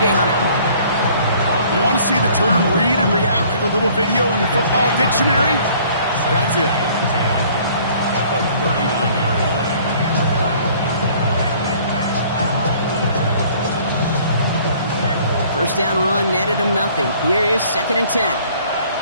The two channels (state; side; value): inverted; both; correlation -0.56